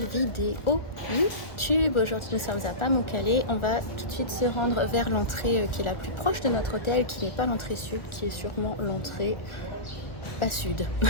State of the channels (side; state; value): right; late; 1.5 ms